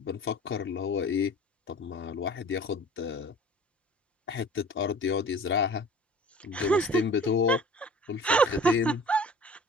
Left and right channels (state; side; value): normal; both; correlation 0.45